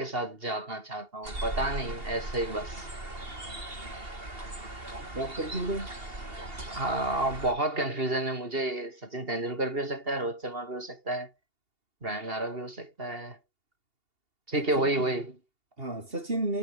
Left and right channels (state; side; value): late; left; 2.8 ms